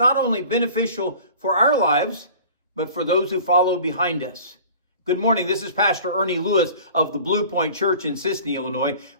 only beneficial for our lives, but for those who follow behind us. Good morning. This is Pastor Ernie Lewis of the Blue Point Church in Sisney, Illinois,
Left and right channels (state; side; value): inverted; both; correlation -0.44